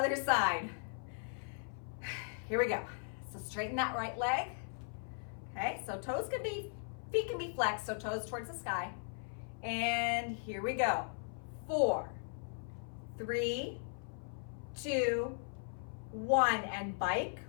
side. Here we go. So straighten that right leg. Okay, so feet can be flexed, so toes towards the sky. And here we go. 4, 3, 2, 1, and bike.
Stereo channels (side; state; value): right; silent; 52 dB below the other